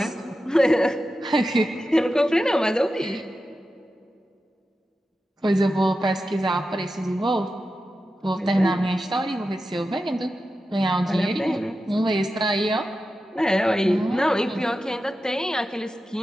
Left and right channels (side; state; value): both; normal; correlation 0.91